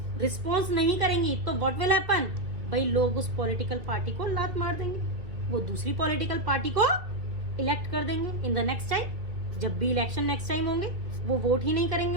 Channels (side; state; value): left; late; 2.4 ms